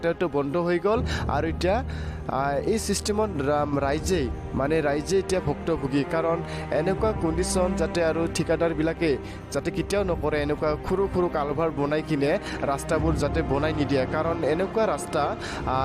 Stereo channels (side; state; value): both; identical; correlation 1.00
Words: বন্ধ হৈ গ'ল আৰু এতিয়া এই চিষ্টেমত ৰাইজে এতিয়া ভুক্তভোগী কাৰণ এনেকুৱা কণ্ডিশ্যন যাতে আৰু ঠিকাদাৰবিলাকে যাতে কেতিয়াও নকৰে এনেকুৱা সৰু সৰু কালভাৰ বনাই কিনে ৰাস্তাবোৰ যাতে বনাই নিদিয়ে কাৰণ